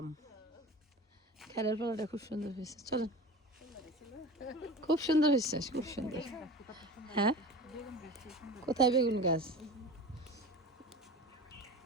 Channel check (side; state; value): both; normal; correlation 0.35